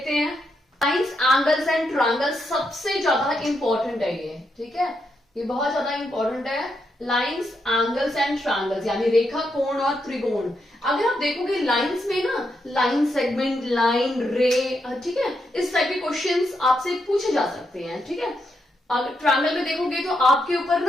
हैं। साइंस, एंगल्स एंड ट्रायंगल्स सबसे ज्यादा इंपॉर्टेंट है ये। ठीक है, ये बहुत ज्यादा इंपॉर्टेंट है। लाइंस, एंगल्स एंड ट्रायंगल्स, यानी रेखा, कोण और त्रिकोण। अगर आप देखोगे लाइंस में ना, लाइन सेगमेंट, लाइन, रे, ठीक है, इस टाइप के क्वेश्चंस आपसे पूछे जा सकते हैं, ठीक है। अगर ट्रायंगल में देखोगे तो आपके ऊपर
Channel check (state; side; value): normal; both; correlation 0.81